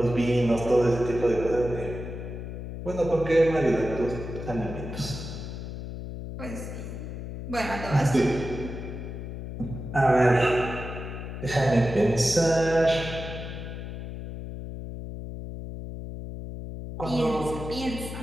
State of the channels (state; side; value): noise; left; hum, 8 dB below the sound